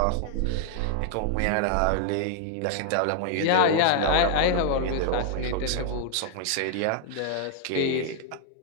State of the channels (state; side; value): different; both; correlation 0.00